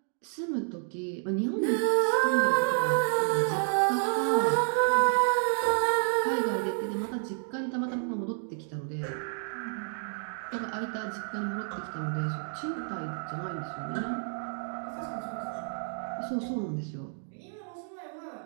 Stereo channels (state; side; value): silent; left; digital silence